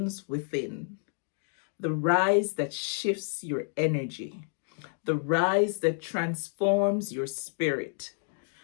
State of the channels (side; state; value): right; silent; 58 dB below the other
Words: within. The rise that shifts your energy. The rise that transforms your spirit.